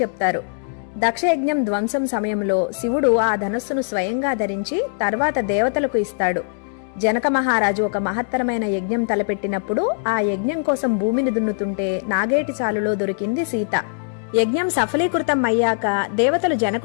చెప్తారు. దక్షయజ్ఞం ధ్వంసం సమయంలో శివుడు ఆ ధనస్సును స్వయంగా ధరించి తర్వాత దేవతలకు ఇస్తాడు. జనక మహారాజు ఒక మహత్తరమైన యజ్ఞం తలపెట్టినప్పుడు ఆ యజ్ఞం కోసం భూమిని దున్నుతుంటే నాగేటి చాలులో దొరికింది సీత. యజ్ఞం సఫలీకృతం అయ్యాక దేవతలు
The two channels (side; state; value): right; silent; digital silence